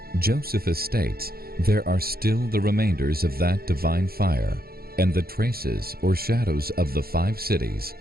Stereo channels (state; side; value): late; left; 0.44 ms